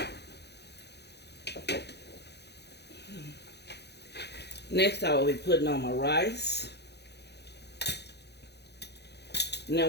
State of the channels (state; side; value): late; right; 0.49 ms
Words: I will be putting on my rice. Now